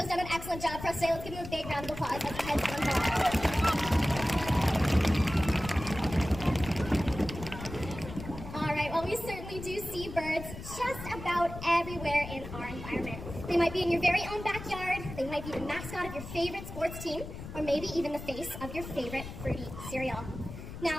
done an excellent job for us today. Let's give him a big round of applause as he heads on home. All right, well, we certainly do see birds just about everywhere in our environment. They might be in your very own backyard, they might be the mascot of your favorite sports team, or maybe even the face of your favorite fruity cereal.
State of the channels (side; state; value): left; noise; rumble, 11 dB below the sound